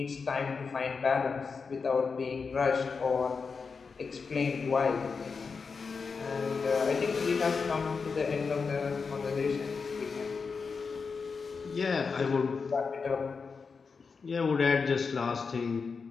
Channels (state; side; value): quieter; right; 5.1 dB